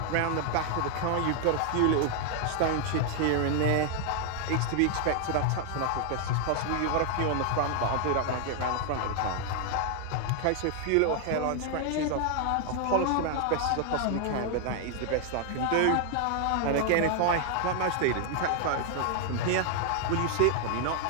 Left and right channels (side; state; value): both; different; correlation 0.00